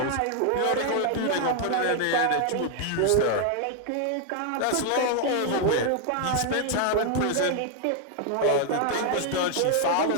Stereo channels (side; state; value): both; different; correlation 0.00